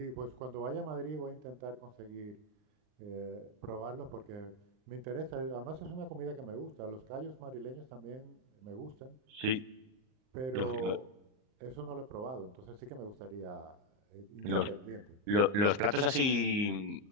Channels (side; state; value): left; late; 39 ms